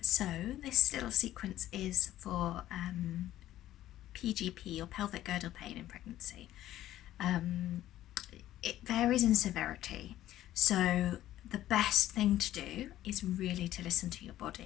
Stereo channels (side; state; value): right; quieter; 13.5 dB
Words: so this little sequence is for PGP or pelvic girdle pain in pregnancy. It varies in severity, so the best thing to do is really to listen to your